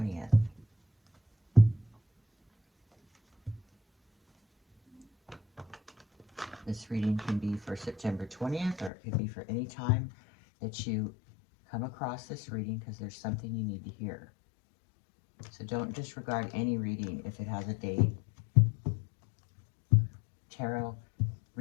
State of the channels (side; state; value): right; drops out; at 8.9 s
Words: This reading can be for September 20th, or it could be for any time that you come across this reading, because there's something you need to hear. So don't disregard any reading if it has a date. Tarot